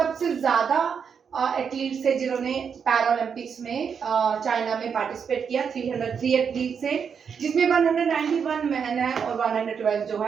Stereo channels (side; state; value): left; quieter; 6.7 dB